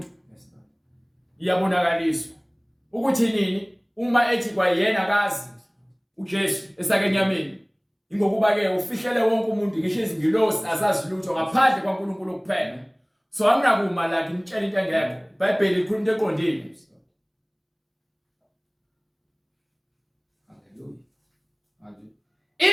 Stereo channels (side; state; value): both; identical; correlation 1.00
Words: iyabonakaliswa ukuthi nini uma ethi kwayena akazi uJesu esakenyameni, ingokuba ke ufihlele wonke umuntu ngisho izingilosi azazi lutho ngaphandle kwaNkulunkulu kuphela. So anginakuma la ngimtshela into engekho. iBhayibheli ikhuluma into eqondile.